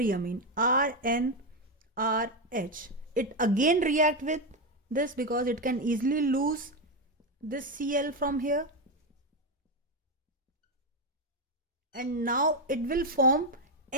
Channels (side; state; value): both; normal; correlation 0.08